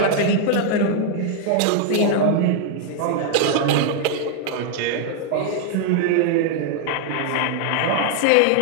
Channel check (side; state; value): both; different; correlation 0.00